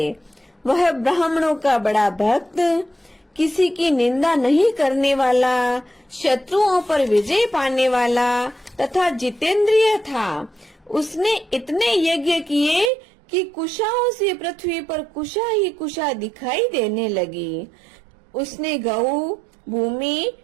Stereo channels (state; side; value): drops out; left; at 12.9 s